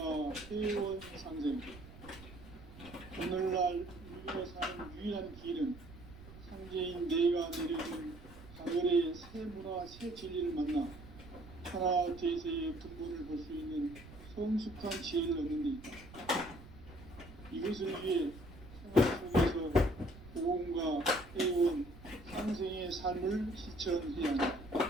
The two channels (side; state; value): right; noise; rumble, 17 dB below the sound